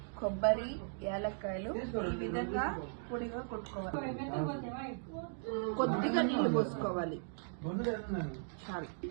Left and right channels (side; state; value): left; silent; digital silence